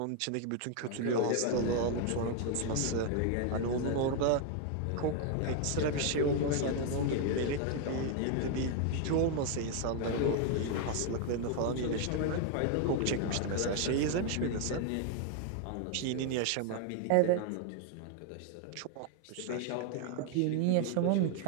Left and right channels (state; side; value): different; both; correlation 0.00